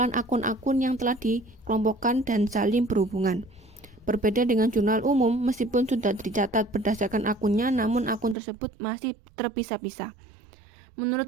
akun-akun yang telah dikelompokkan dan saling berhubungan. Berbeda dengan jurnal umum, meskipun sudah dicatat berdasarkan akunnya, namun akun tersebut masih terpisah-pisah.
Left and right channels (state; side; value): drops out; left; at 8.3 s